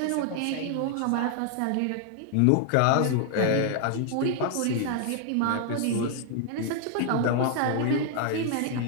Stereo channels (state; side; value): different; both; correlation 0.00